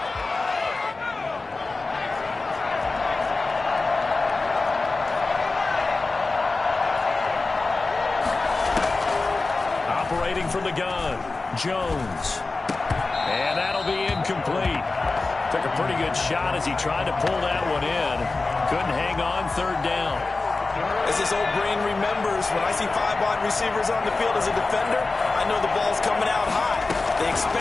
From the gun, Jones. And that'll be incomplete. Took a pretty good shot as he tried to pull that one in. Couldn't hang on, 3rd down. As this old brain remembers, when I see 5 wide receivers on the field as a defender, I know the ball's coming out high. They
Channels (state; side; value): quieter; right; 3.6 dB